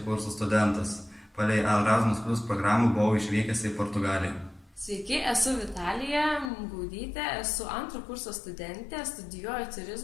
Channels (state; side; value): drops out; right; at 6.5 s